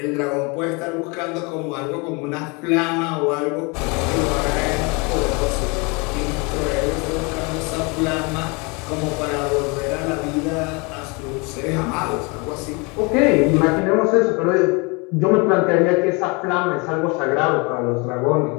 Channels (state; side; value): quieter; right; 29.8 dB